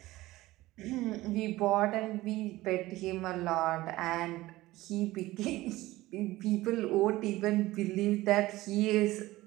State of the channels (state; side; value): quieter; left; 17.9 dB